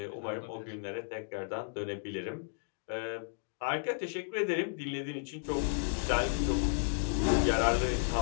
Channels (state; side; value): silent; right; digital silence